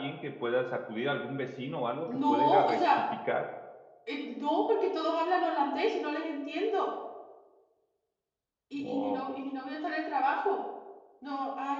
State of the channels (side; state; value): both; identical; correlation 1.00